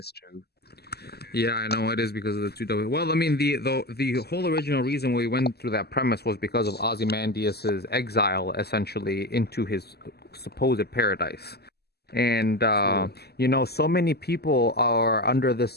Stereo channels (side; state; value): right; late; 0.46 ms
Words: true. Yeah, I know it is because of the two W. Well, I mean, the whole original reason we went through that premise was because of Ozymandias's exile, essentially, into his supposed paradise. And True. so many people are under